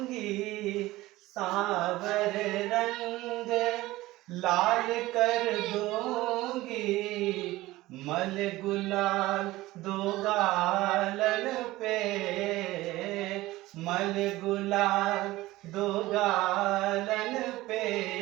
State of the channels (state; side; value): quieter; left; 17.9 dB